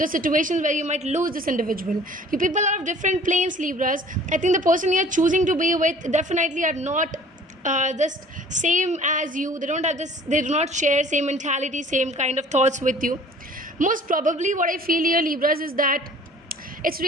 situations where you might lose this individual. You people are of different planes, Libras. I think the person you're choosing to be with definitely are not just same as you. They don't have this, they do not share same mentality, same kind of thoughts with you. Most probably what I feel here, Libras, is that it's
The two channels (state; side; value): normal; both; correlation 0.50